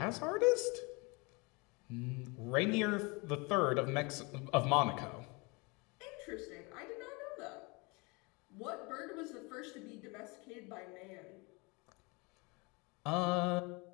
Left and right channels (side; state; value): right; quieter; 28.2 dB